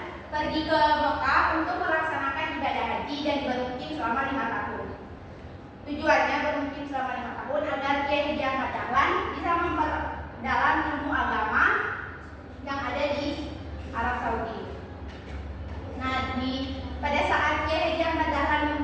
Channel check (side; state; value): both; identical; correlation 1.00